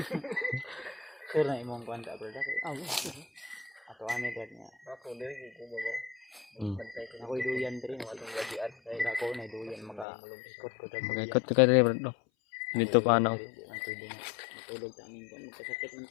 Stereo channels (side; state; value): right; drops out; at 10.1 s